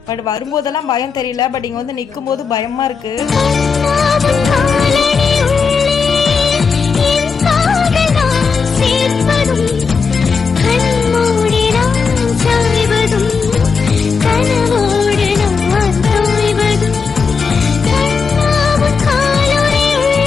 பட் வரும்போதெல்லாம் பயம் தெரியல, பட் இங்கே வந்து நிற்கும் போது பயமாக இருக்குது.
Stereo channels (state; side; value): quieter; right; 5.3 dB